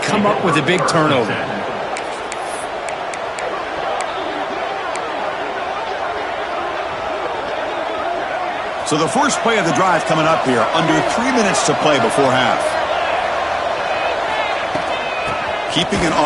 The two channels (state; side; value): identical; both; correlation 1.00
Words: come up with a big turnover. So the first play of the drive coming up here, under 3 minutes to play before half. Keeping it